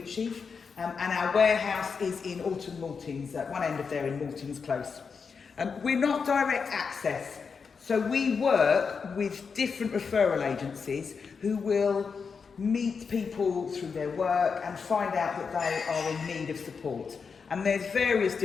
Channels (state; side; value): quieter; right; 5.6 dB